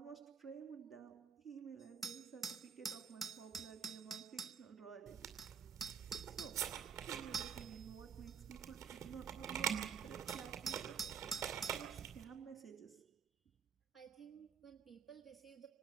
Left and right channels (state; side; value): quieter; left; 7.2 dB